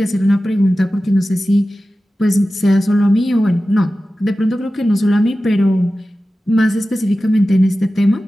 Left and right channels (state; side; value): normal; both; correlation 0.95